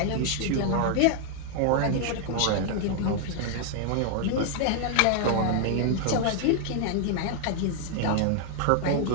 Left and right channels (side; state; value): both; different; correlation 0.00